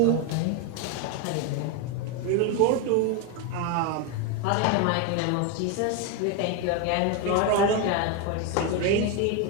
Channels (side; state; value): both; different; correlation 0.02